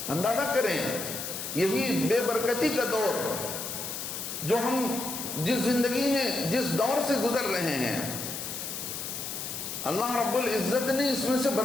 اندازہ کریں یہی بے برکتی کا دور جو ہم جس زندگی میں جس دور سے گزر رہے ہیں، اللہ رب العزت نے اس میں سے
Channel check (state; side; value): noise; left; hiss, 6 dB below the sound